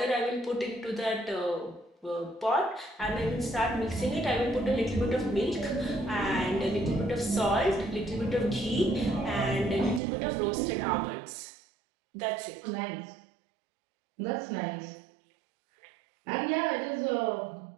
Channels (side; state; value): left; drops out; at 10.0 s